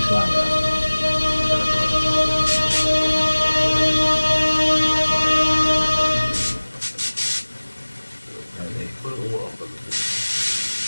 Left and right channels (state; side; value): inverted; both; correlation -1.00